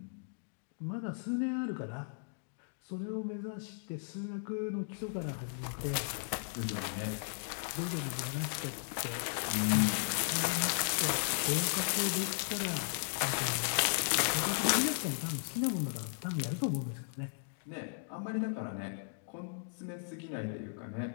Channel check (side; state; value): right; silent; digital silence